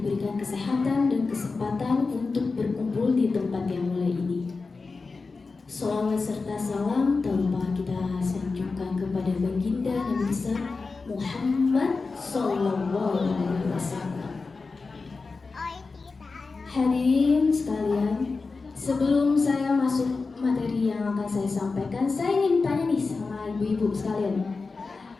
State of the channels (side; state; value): right; quieter; 4.2 dB